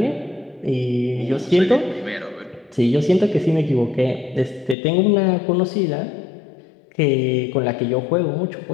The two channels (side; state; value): right; drops out; at 4.8 s